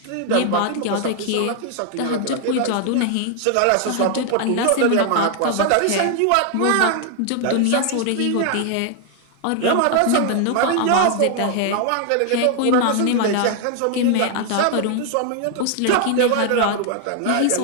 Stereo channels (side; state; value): both; different; correlation 0.00